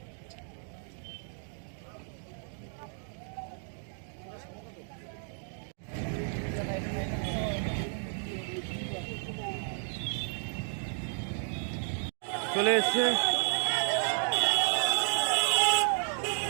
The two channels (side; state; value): left; silent; 56 dB below the other